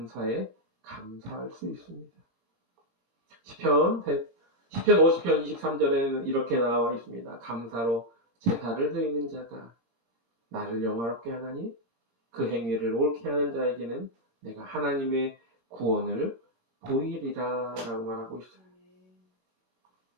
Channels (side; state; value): left; late; 22 ms